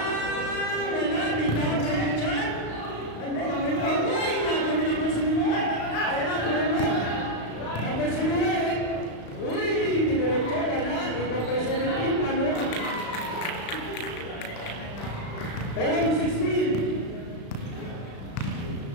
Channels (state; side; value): late; right; 35 ms